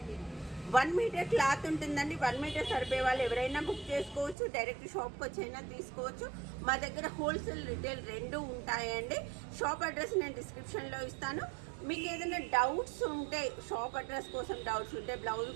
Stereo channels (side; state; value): left; drops out; at 4.4 s